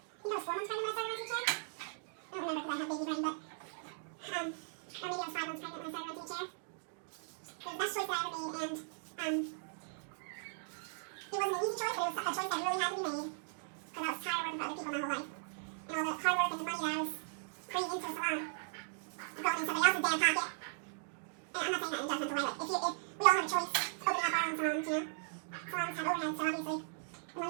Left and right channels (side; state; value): left; silent; digital silence